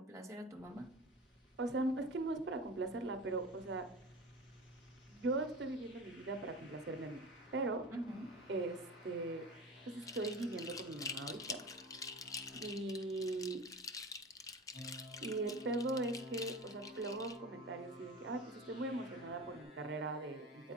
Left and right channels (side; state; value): both; normal; correlation 0.33